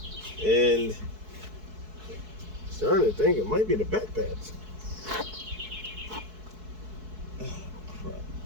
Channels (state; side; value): late; left; 4.6 ms